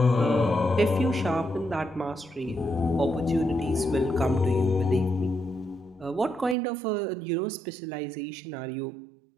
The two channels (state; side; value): drops out; left; at 6.6 s